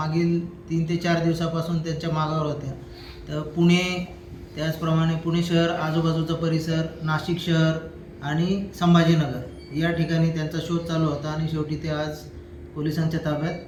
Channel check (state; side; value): identical; both; correlation 1.00